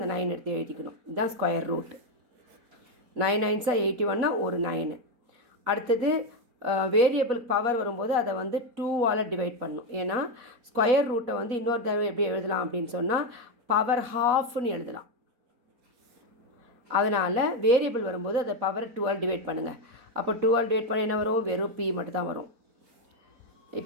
9 எடுத்து எழுதிக்கணும். இதுதான் ஸ்கொயர் ரூட். 9 9s are 81னா ஒரு 9. அடுத்தது வேரியபிள் பவர் வரும்போது அதை வந்து 2ஆல் டிவைட் பண்ணணும். ஏன்னா ஸ்கொயர் ரூட்டை வந்து இன்னொரு தடவை எப்படி எழுதலாம் அப்படின்னு சொன்னால் பவர் ஹாஃப்னு எழுதலாம். அதனால் வேரியபிள் வரும்போது அதை பவர் 2ஆல் டிவைட் பண்ணுங்கள். அப்போ 2ஆல் டிவைட் பண்ண என்ன வரும்? வெறும் p மட்டும் தான் வரும்.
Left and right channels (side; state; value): left; late; 4.0 ms